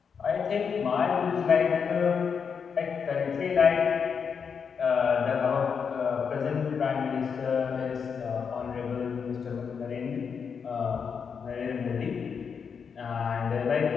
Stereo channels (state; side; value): quieter; right; 6.4 dB